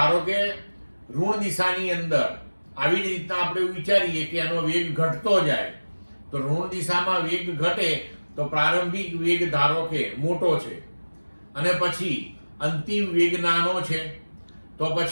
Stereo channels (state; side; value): inverted; both; correlation -1.00